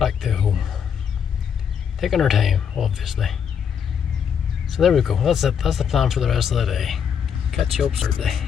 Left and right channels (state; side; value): quieter; right; 7.6 dB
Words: to home. Taking our time, obviously. So there we go, that's it, that's the plan for the rest of the day. Catch you up Saturday.